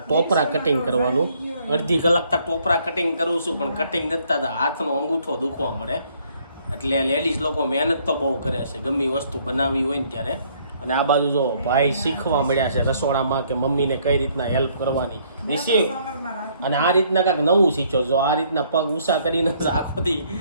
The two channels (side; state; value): both; inverted; correlation -0.65